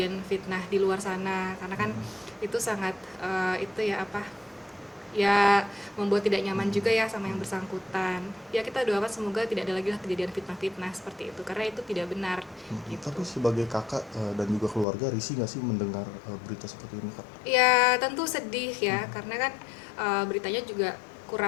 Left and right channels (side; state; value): right; drops out; at 14.9 s